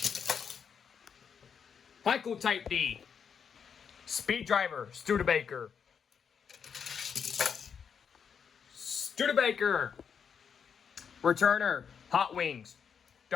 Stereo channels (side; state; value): right; quieter; 7.0 dB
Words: Heiko Type D, Speed Driver, Studebaker. Studebaker. Returner, Hot Wings,